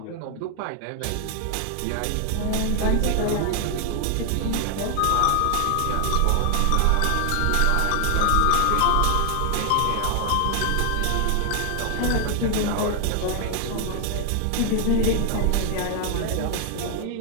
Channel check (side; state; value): both; different; correlation 0.00